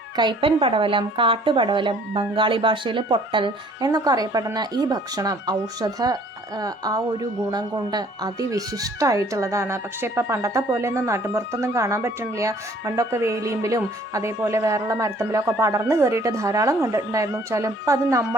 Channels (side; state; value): both; normal; correlation 0.57